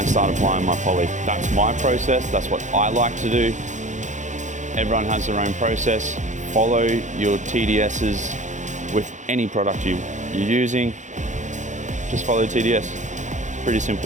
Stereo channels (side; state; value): left; late; 0.35 ms